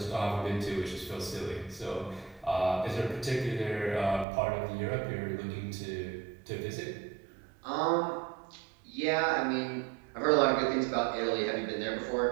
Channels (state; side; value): drops out; left; at 4.2 s